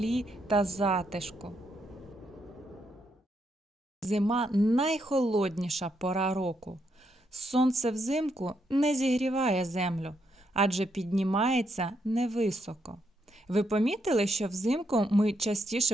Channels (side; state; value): both; normal; correlation 0.78